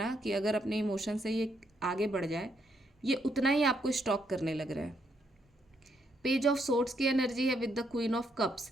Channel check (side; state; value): both; normal; correlation 0.75